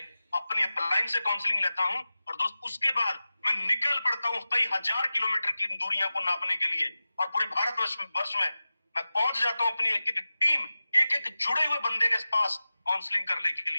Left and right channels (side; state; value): both; inverted; correlation -0.95